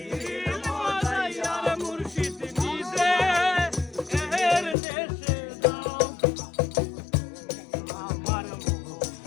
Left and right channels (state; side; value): drops out; right; at 4.8 s